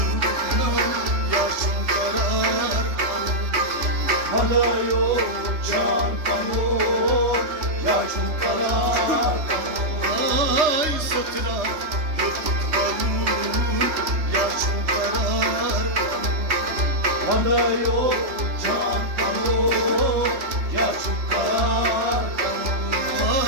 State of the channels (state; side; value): late; left; 3.0 ms